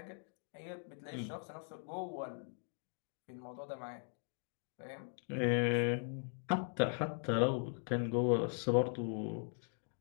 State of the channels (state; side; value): silent; right; 51 dB below the other